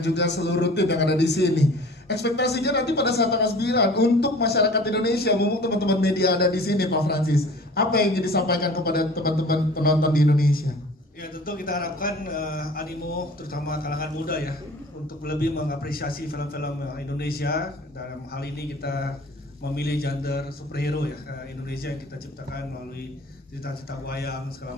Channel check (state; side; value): normal; both; correlation 0.45